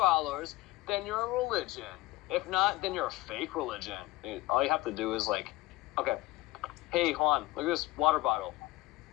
then you're a religion. If not, then you're a fake religion. All you have to do is like, okay, hey Juan, look at this water bottle.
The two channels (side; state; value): right; quieter; 18.8 dB